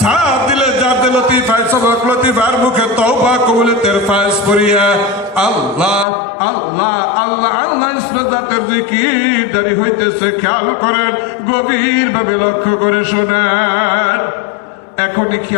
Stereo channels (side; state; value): right; drops out; at 6.1 s